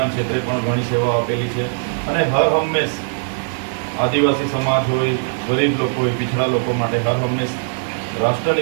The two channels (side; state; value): left; silent; digital silence